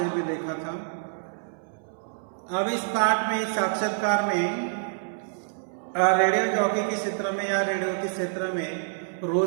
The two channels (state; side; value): silent; left; 60 dB below the other